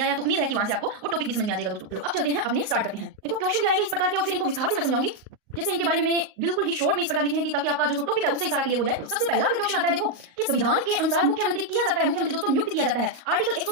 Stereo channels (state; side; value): late; left; 38 ms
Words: आया तो उम्मीद है कि वहां से आपको वो टॉपिक भी समझ में आ जाएगा दोस्तों। तो अब चलते हैं, अपने स्टार्ट करते हैं। देखो क्वेश्चन भी आएंगे इस प्रकार के और फिर इनको विस्तार से मैं समझाऊंगी। जैसे इनके बारे में मैंने बिल्कुल ही शॉर्ट में इस प्रकार लिखे हैं कि ताकि आपका जो टॉपिक है उससे सारा क्लियर हो जाए। तो सबसे पहला अगर क्वेश्चन आता है देखो कि संविधान के अनुसार मुख्यमंत्री किया जाता है, मुख्यमंत्री दोस्तों नियुक्त किया जाता है आर्टिकल